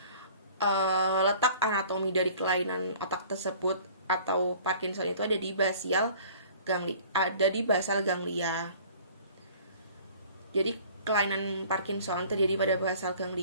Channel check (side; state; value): both; inverted; correlation -0.49